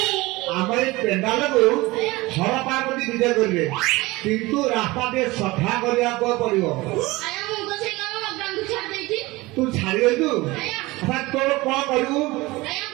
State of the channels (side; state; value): left; quieter; 21.2 dB